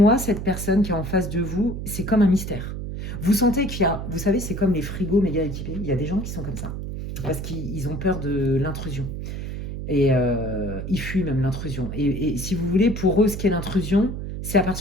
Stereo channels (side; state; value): right; noise; hum, 6 dB below the sound